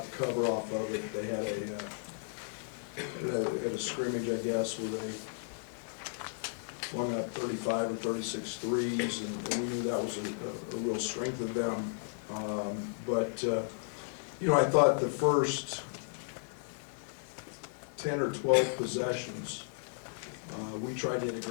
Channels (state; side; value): silent; right; digital silence